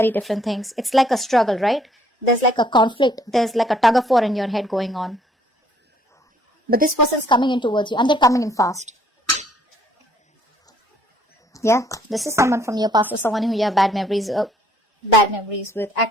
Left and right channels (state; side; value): normal; both; correlation 0.63